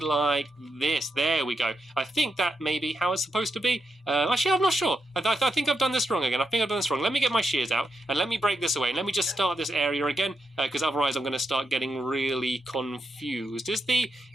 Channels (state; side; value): normal; both; correlation 0.84